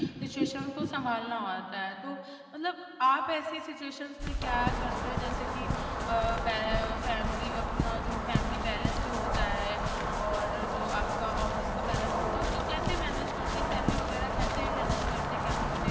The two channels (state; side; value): identical; both; correlation 1.00